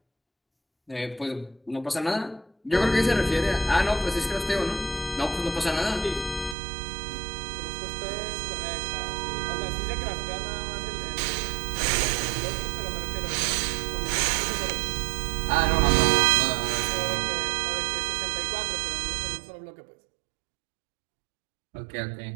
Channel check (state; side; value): drops out; left; at 6.6 s